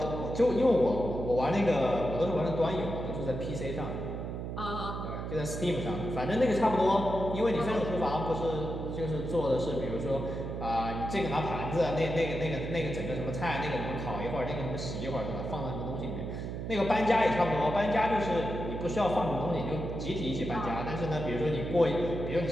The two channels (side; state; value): right; noise; hum, 5 dB below the sound